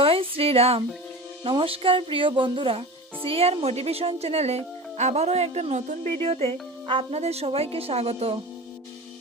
শ্রীরাম। নমস্কার প্রিয় বন্ধুরা, সিআর মোটিভেশন চ্যানেলে আবারও একটা নতুন ভিডিওতে আপনাদের সবাইকে স্বাগত।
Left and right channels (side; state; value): both; normal; correlation 0.32